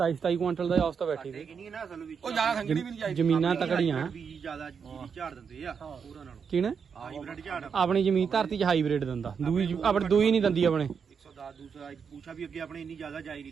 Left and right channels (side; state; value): left; quieter; 6.4 dB